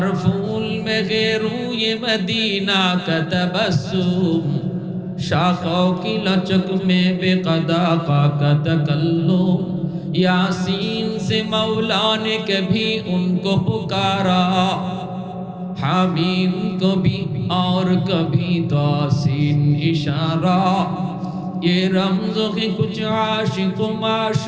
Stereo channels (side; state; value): both; identical; correlation 1.00